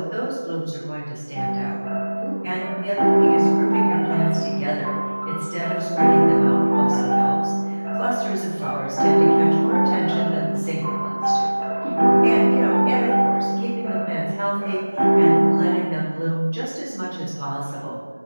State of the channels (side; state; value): both; inverted; correlation -1.00